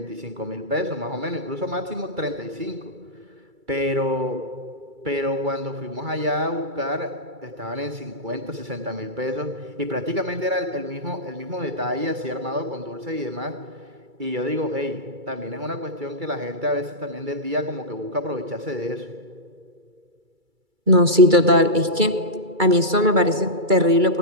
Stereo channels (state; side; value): late; left; 2.3 ms